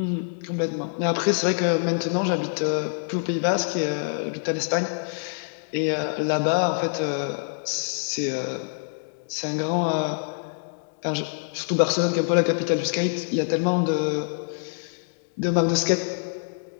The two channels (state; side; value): silent; right; digital silence